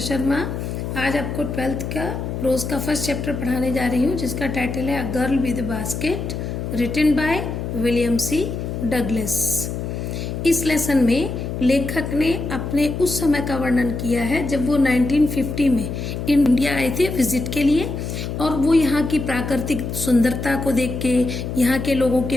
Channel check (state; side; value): noise; left; hum, 5 dB below the sound